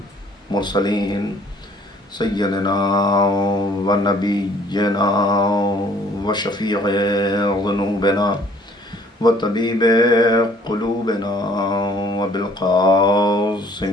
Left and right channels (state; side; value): normal; both; correlation 0.57